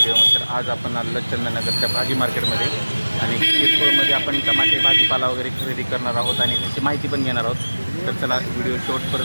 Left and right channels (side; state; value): both; inverted; correlation -1.00